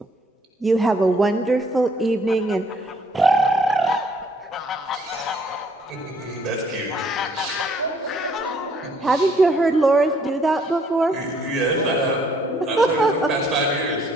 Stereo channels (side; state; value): both; normal; correlation 0.65